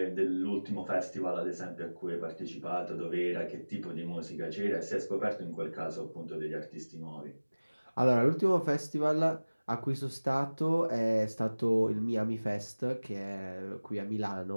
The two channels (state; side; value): inverted; both; correlation -1.00